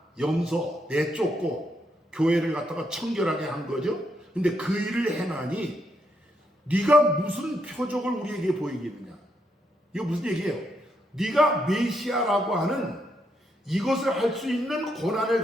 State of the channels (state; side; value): normal; both; correlation 0.78